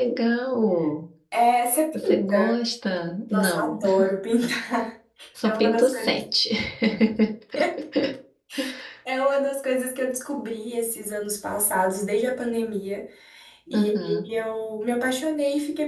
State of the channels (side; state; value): both; identical; correlation 1.00